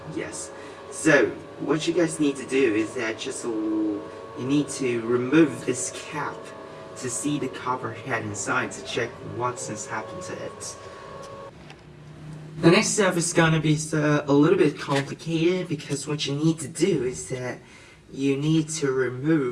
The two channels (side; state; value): both; identical; correlation 1.00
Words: Yes. So, what you guys need to do is that you need to remove this cap to see the copper head inside to check what's happened to it. The next step is gonna be a little bit complicated, because what you need to do is that you need to